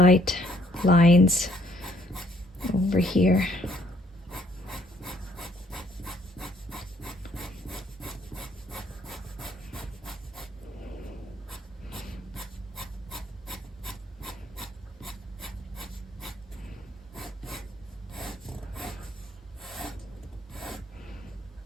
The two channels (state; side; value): normal; both; correlation 0.66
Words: lines over here.